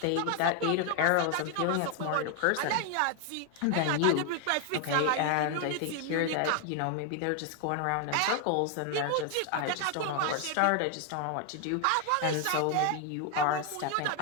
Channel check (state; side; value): different; both; correlation 0.01